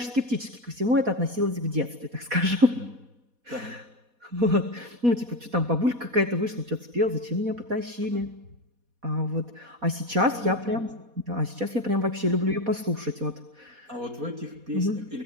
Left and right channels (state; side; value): late; left; 4.1 ms